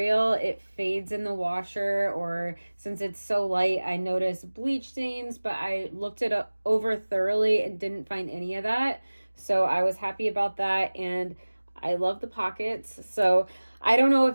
it fades in the washer, or since it's so light, I notice bleach stains, but I looked it over thoroughly and didn't find any of that. So I was happy about that. And I love the pockets. So I don't know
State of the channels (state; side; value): inverted; both; correlation -1.00